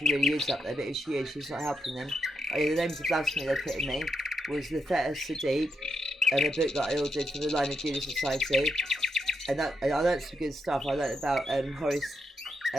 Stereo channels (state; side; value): normal; both; correlation 0.81